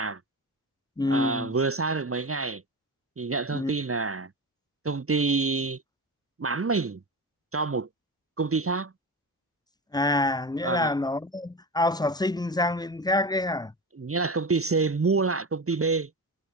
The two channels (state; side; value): normal; both; correlation 0.24